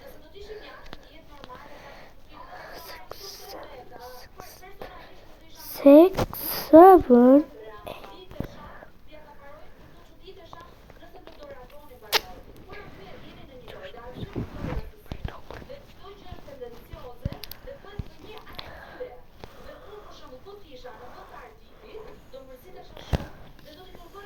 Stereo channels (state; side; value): identical; both; correlation 1.00